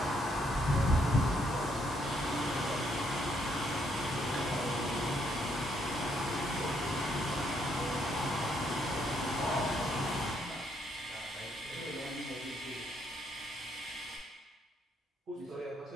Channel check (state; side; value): normal; both; correlation 0.73